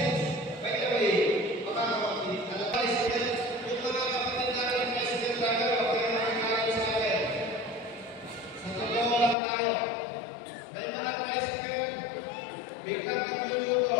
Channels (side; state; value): right; drops out; at 9.3 s